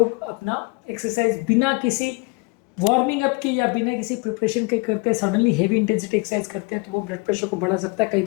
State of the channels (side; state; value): right; quieter; 29.1 dB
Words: अपना एक्सरसाइज बिना किसी वार्मिंग अप की या बिना किसी प्रिपरेशन के करते हैं, सडनली हेवी इंटेंसिटी एक्सरसाइज करते हैं, तो वो ब्लड प्रेशर को बढ़ा सकता है, कई